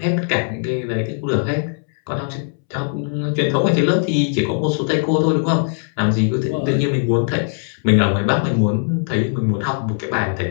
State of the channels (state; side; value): silent; right; 66 dB below the other